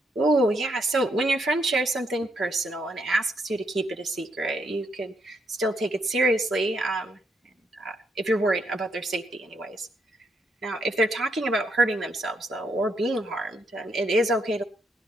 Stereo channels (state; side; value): normal; both; correlation 0.76